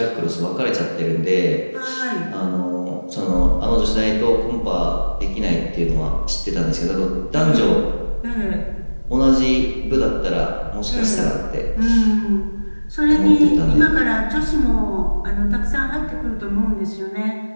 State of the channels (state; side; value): inverted; both; correlation -1.00